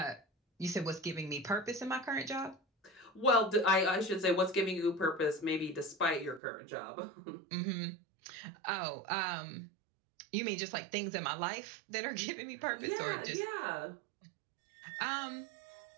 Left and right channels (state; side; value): drops out; left; at 6.4 s